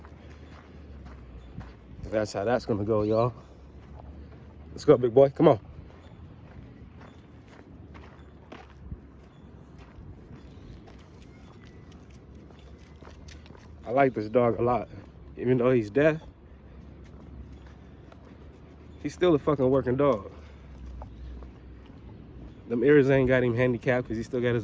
That's how that's gonna go, y'all. Let's go, big boy, come on. I like this dog a lot. Even though he's deaf, he's still a fucking working dog. Them ears ain't got him handicapped because he still got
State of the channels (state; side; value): identical; both; correlation 1.00